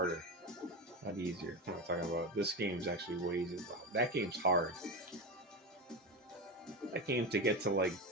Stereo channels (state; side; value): normal; both; correlation 0.19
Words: Not easier. I'm not talking about. This game's actually way easier. That game's hard. That game to get to like